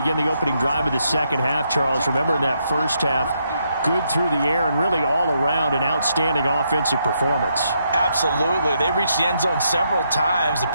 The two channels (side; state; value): both; inverted; correlation -0.78